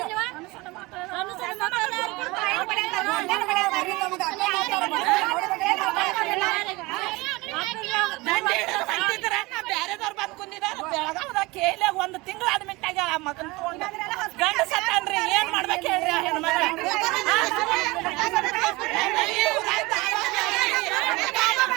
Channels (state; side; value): quieter; left; 22.8 dB